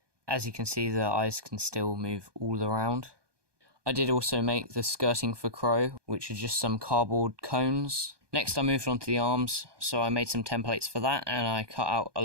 As you can see, the eyes can still move all around. I did also make the skirting for Crow, which are just some cardboard cones Next I moved on to the arms, so I made some templates for that and I cut out a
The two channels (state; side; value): late; left; 1.2 ms